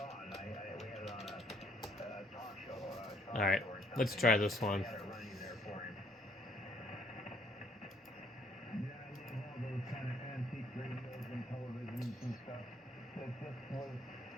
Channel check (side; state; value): both; normal; correlation 0.65